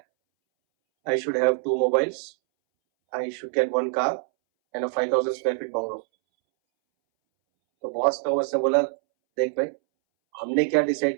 I should have 2 mobiles. I should get 1 car and a 5,000 square feet bungalow. तो बॉस का उसने बोला, देख भाई हमने क्या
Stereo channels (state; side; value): silent; left; 62 dB below the other